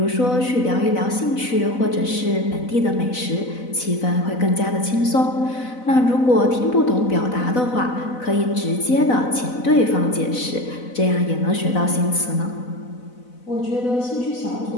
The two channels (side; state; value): right; late; 4.0 ms